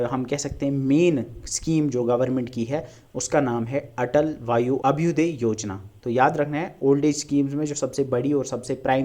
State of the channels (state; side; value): identical; both; correlation 1.00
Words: हम कह सकते हैं मेन स्कीम जो गवर्नमेंट की है उसका नाम है अटल वायु अभ्युदय योजना। तो याद रखना है ओल्ड एज स्कीम्स में जो सबसे बड़ी और सबसे